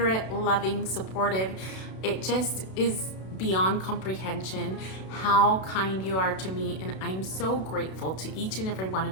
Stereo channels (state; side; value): late; right; 32 ms